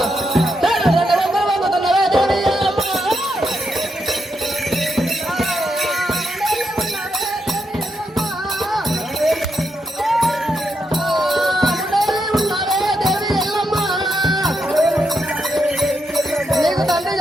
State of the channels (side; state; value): both; normal; correlation 0.81